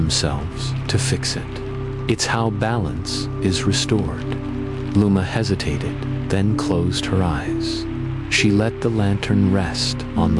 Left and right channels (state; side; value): identical; both; correlation 1.00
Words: to fix it. It's how balance is restored." Luma hesitated, then closed her eyes. She let the lantern rest on